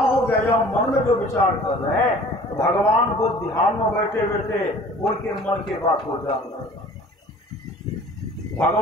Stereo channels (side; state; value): both; normal; correlation 0.48